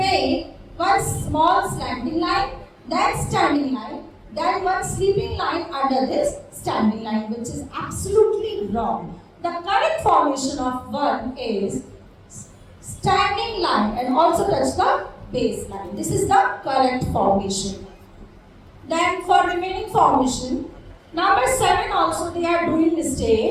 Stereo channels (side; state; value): both; identical; correlation 1.00